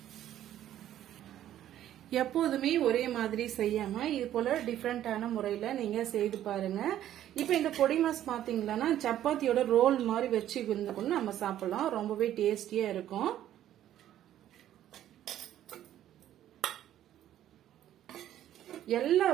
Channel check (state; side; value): quieter; left; 11.9 dB